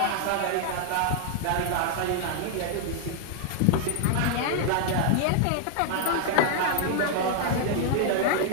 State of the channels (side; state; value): both; different; correlation 0.00